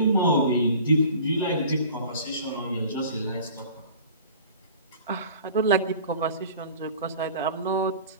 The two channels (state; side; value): inverted; both; correlation -0.44